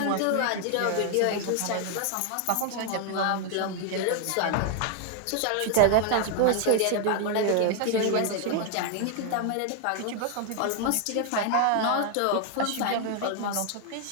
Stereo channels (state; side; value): different; both; correlation 0.00